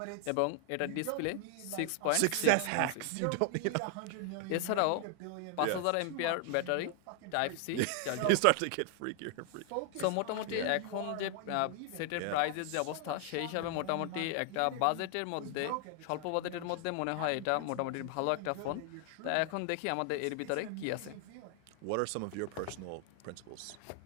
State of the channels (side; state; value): both; different; correlation 0.00